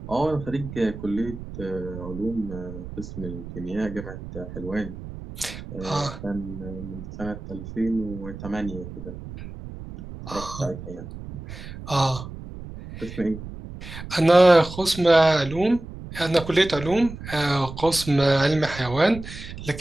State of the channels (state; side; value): noise; right; rumble, 12 dB below the sound